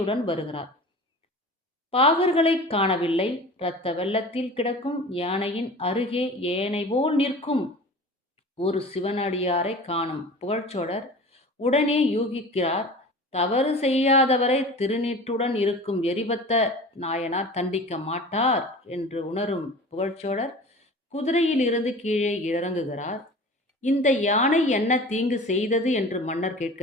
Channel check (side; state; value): both; normal; correlation 0.38